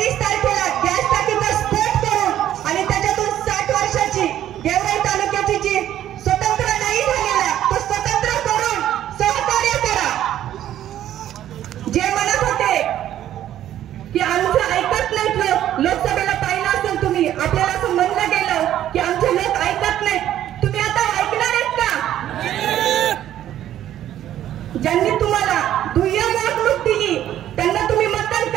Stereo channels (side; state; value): left; quieter; 11.9 dB